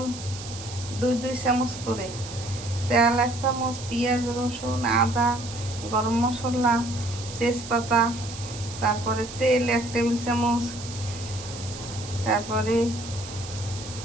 দুই চামচ করে, তেল 1 চামচ, পেঁয়াজ রসুন আদা গরম মশলা তেজপাতা, তারপরে তেল 1 টেবিল চামচ, তারপরে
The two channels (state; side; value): noise; right; hiss, 12 dB below the sound